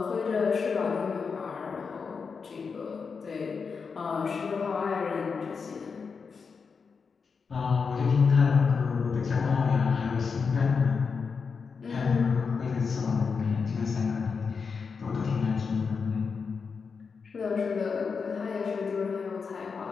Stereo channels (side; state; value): right; quieter; 5.4 dB